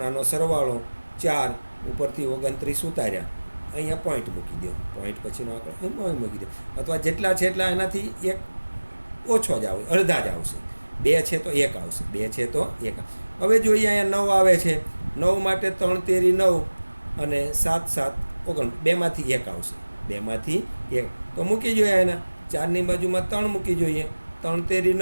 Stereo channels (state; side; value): inverted; both; correlation -1.00